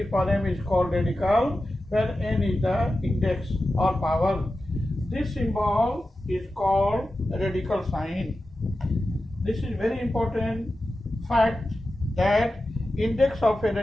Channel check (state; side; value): normal; both; correlation 0.92